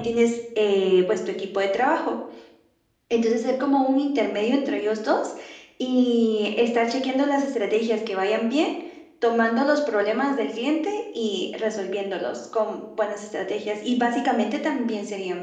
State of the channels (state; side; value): identical; both; correlation 1.00